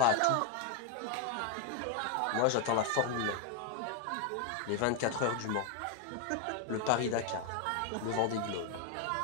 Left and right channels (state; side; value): different; both; correlation 0.01